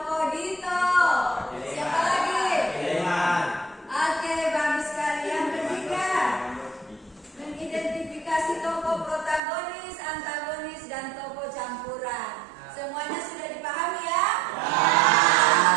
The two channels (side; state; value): left; drops out; at 9.4 s